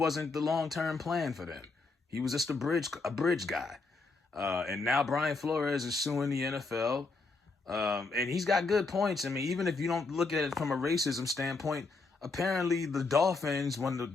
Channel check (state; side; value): quieter; right; 3.8 dB